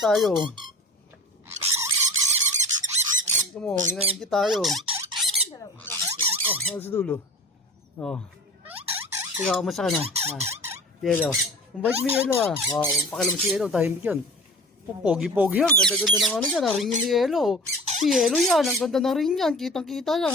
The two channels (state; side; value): normal; both; correlation 0.40